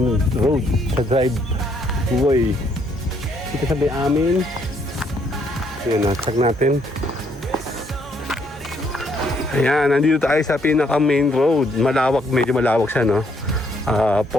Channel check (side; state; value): both; normal; correlation 0.70